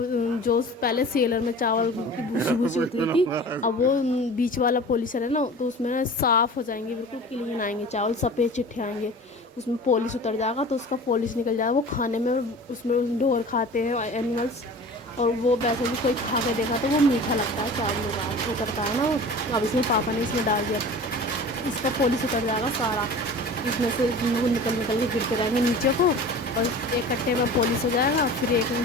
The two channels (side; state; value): both; normal; correlation 0.39